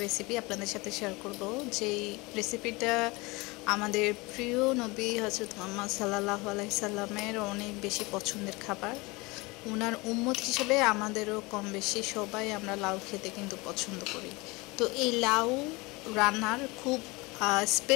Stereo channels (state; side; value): quieter; right; 24.4 dB